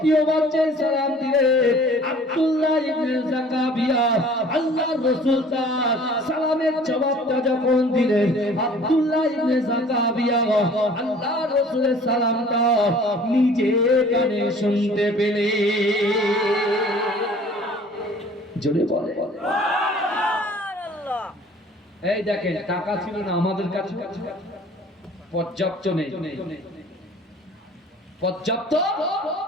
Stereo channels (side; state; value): both; normal; correlation 0.50